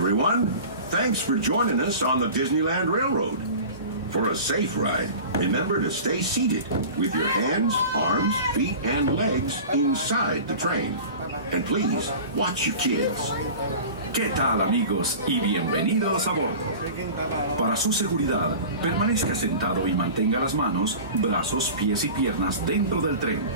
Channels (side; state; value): both; inverted; correlation -0.37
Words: Thanks for joining us on the Disneyland Railroad. For a safe ride, remember to stay seated with your hands, arms, feet, and legs inside the train. And please, watch your kids. ¿Qué tal, amigos? Y bienvenidos a bordo. Para su seguridad, permanezca sentado y mantenga las manos, brazos, pies y piernas dentro del tren.